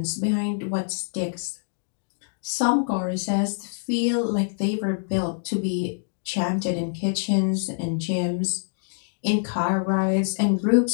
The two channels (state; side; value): silent; right; digital silence